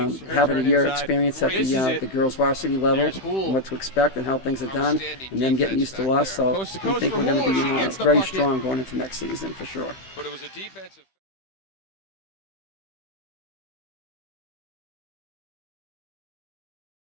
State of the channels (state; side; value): late; right; 15 ms